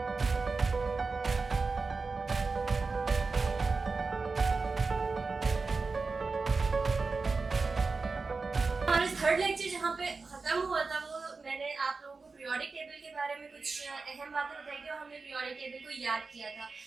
हमारा थर्ड लेक्चर जहाँ पे ख़त्म हुआ था, वो मैंने आप लोगों को पीरियोडिक टेबल के बारे में कुछ अहम बातें बताई थी, और हमने पीरियोडिक टेबल को याद किया था,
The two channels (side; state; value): left; quieter; 4.2 dB